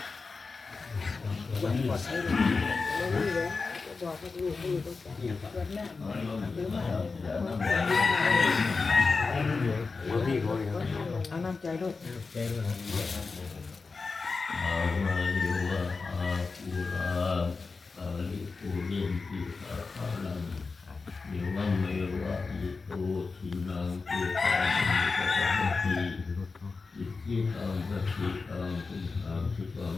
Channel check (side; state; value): right; quieter; 4.3 dB